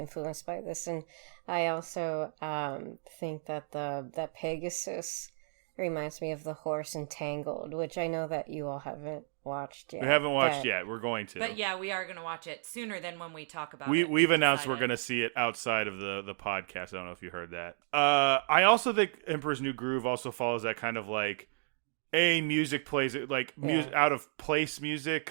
by this, and I also think that that Pegasus reminds me of the horse in Tangled, which I know that you all haven't watched yet. We haven't watched yet. We're going to. But yeah, we are going to watch it sooner than when we talk about it. We've announced we're going to see it outside of the podcast. I don't know if you heard that. I also think Emperor's New Groove also follows that kind of like music plays it like out of place music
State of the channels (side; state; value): left; silent; digital silence